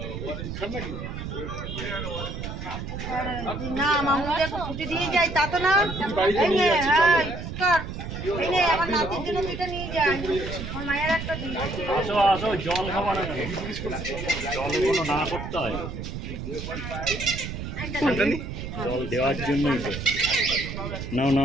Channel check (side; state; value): right; noise; rumble, 7 dB below the sound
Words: না মামুকে ছুটি দিয়ে যাই তা তো না। আমার নাতির জন্য দুইটা নিয়ে যাই, আমার মায়ের একটা দিই। আসো আসো, জল খাবার না, জল কোনো না করতে হয়, জল দেওয়ার জন্যই তো। নাও